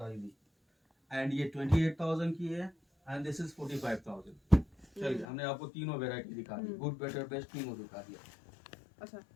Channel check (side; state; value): right; drops out; at 5.2 s